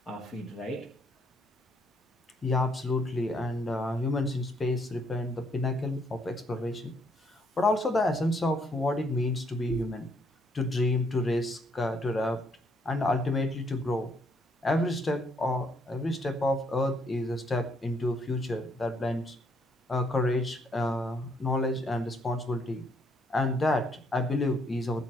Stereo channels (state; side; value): normal; both; correlation 0.70